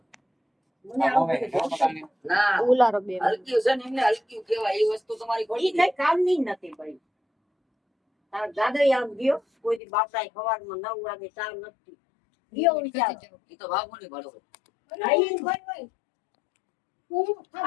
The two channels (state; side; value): drops out; right; at 9.8 s